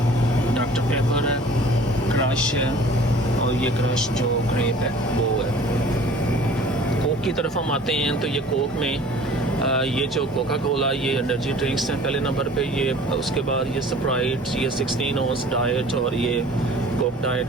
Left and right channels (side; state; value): both; normal; correlation 0.47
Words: डॉक्टर पेपर है, क्रश है, और ये क्रश जो ग्रेप है वो है। कोक की तरफ हम आते हैं तो ये कोक में ये जो कोका कोला ये एनर्जी ड्रिंक्स हैं पहले नंबर पे। ये उसके बाद ये स्प्राइट, ये 16 ऑन्स डाइट, और ये कोक